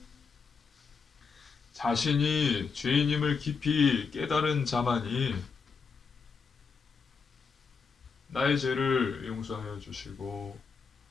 자신이 죄인임을 깊이 깨달은 자만이 나의 죄를 용서하여 주시고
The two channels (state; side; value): quieter; right; 5.3 dB